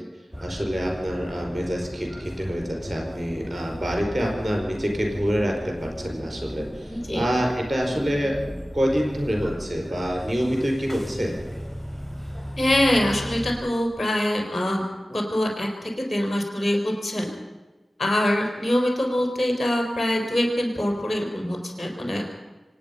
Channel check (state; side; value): normal; both; correlation 0.96